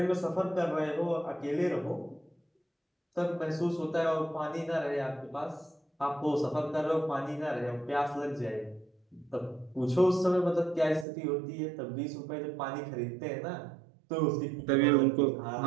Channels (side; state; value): left; drops out; at 11.1 s